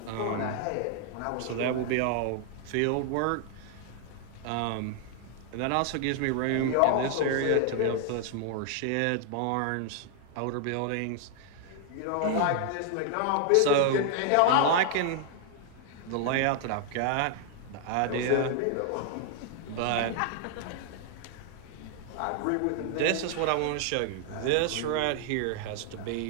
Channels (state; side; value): different; both; correlation 0.00